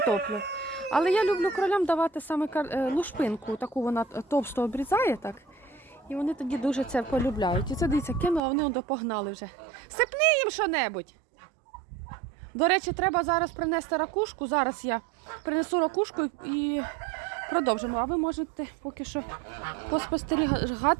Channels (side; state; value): left; drops out; at 8.4 s